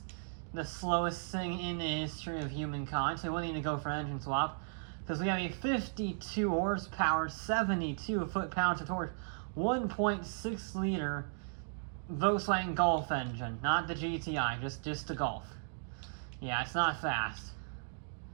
the slowest thing in the history of humankind, so we won't need to go for an engine swap, because we have a 52 horsepower, 72 foot-pounds of torque, 1.6 liter Volkswagen Golf engine, not the GTI, just the Golf. Yeah, it's not fast.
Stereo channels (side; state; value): left; silent; digital silence